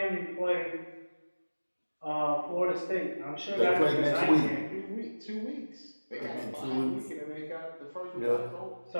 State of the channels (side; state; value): both; inverted; correlation -1.00